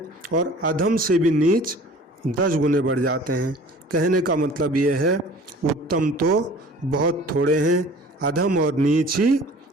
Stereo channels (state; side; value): normal; both; correlation 0.46